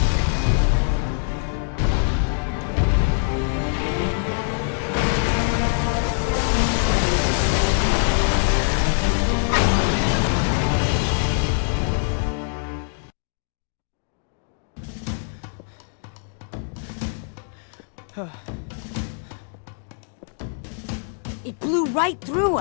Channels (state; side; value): silent; right; digital silence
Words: It blew right through